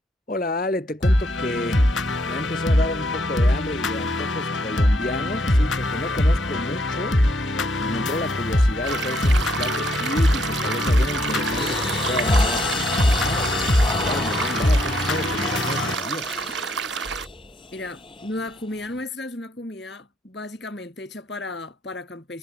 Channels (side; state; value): both; normal; correlation 0.72